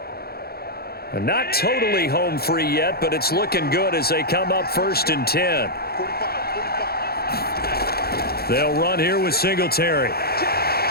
And not totally home free yet, but it's looking good as they come up 1st and 10. They'll run here with Singletary.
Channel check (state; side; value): late; right; 0.45 ms